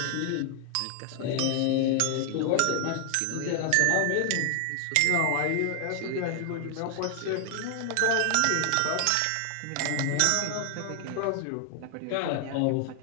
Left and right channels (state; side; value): different; both; correlation 0.00